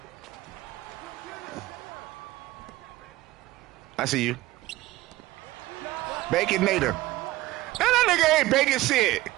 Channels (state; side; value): quieter; left; 17.7 dB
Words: I see you. Baconator. That nigga ain't baking shit.